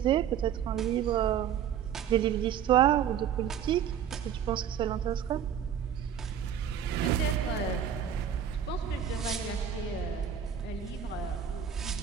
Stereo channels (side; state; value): left; quieter; 8.8 dB